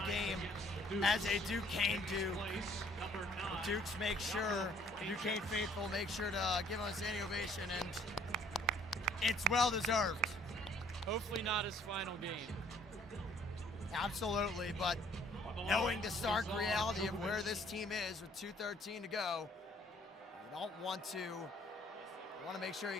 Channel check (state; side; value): normal; both; correlation 0.59